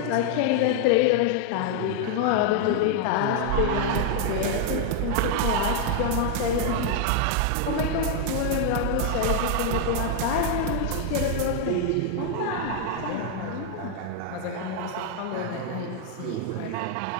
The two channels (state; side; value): different; both; correlation 0.00